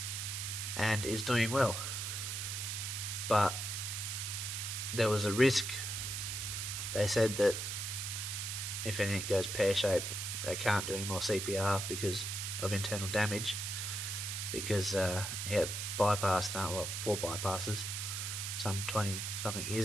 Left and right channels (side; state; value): right; noise; hiss, 3 dB below the sound